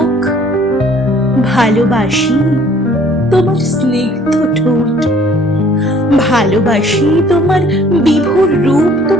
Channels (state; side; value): normal; both; correlation 0.57